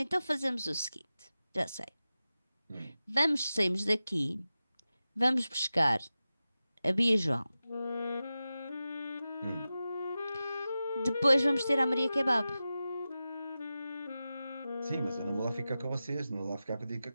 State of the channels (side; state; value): both; inverted; correlation -0.94